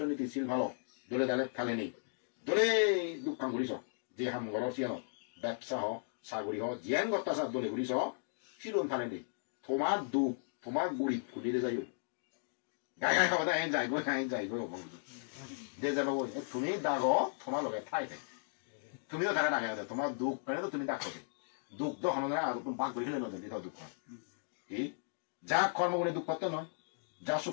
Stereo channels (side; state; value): right; silent; digital silence